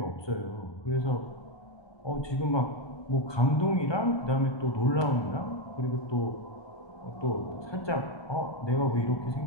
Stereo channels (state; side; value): late; right; 1.2 ms